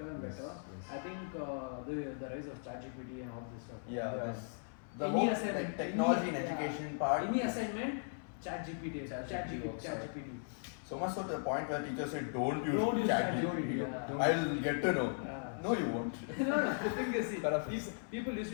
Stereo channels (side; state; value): right; silent; 53 dB below the other